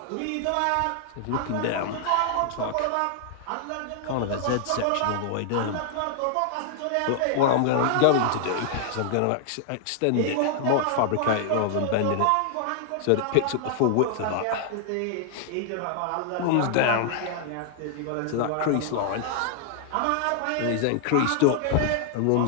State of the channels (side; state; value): both; different; correlation 0.00